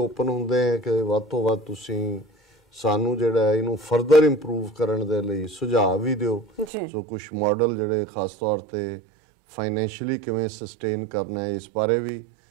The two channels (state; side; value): drops out; left; at 6.7 s